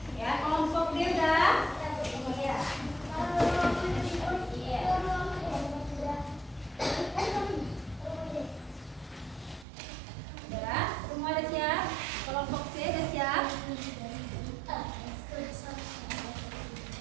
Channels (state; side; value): drops out; left; at 9.7 s